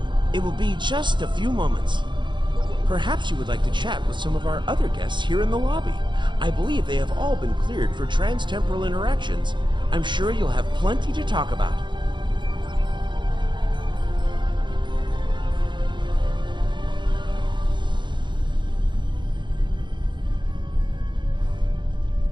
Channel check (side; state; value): left; late; 0.23 ms